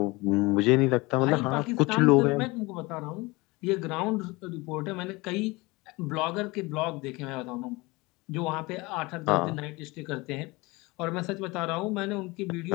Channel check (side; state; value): right; quieter; 23.5 dB